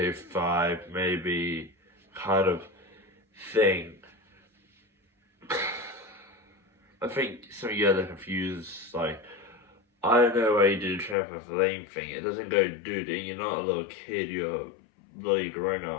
5, maybe kind of thing. I think some of you guys are confused, like, I don't know why you did a trampoline thing. It doesn't go, dude, you're not a little kid, you're a bloody grown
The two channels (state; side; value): drops out; right; at 11.2 s